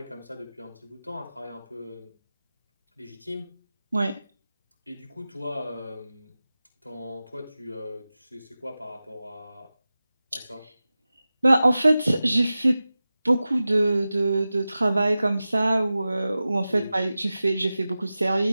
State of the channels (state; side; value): inverted; both; correlation -0.95